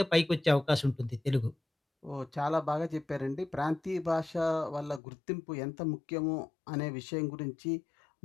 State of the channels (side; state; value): right; drops out; at 5.0 s